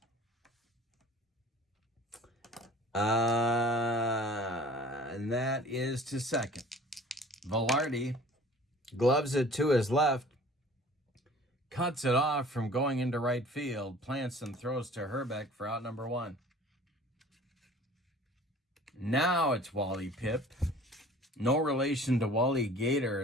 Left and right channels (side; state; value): both; normal; correlation 0.47